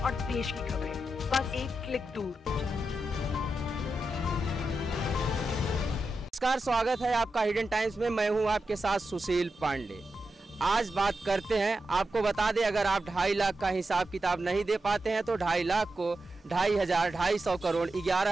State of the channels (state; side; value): normal; both; correlation 0.89